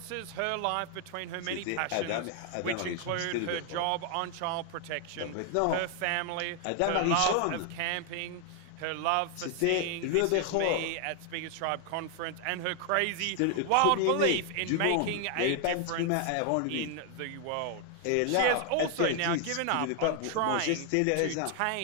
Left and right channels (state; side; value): different; both; correlation 0.00